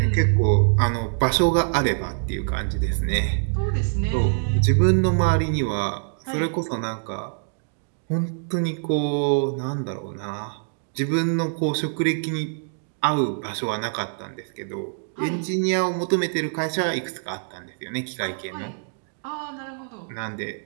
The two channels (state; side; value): silent; left; digital silence